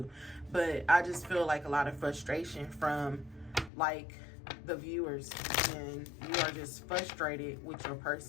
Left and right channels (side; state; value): right; drops out; at 3.7 s